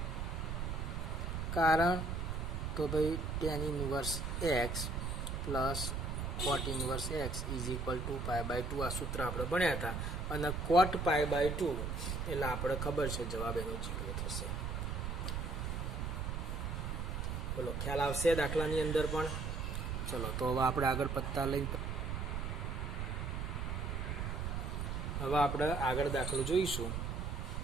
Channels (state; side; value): noise; right; rumble, 2 dB below the sound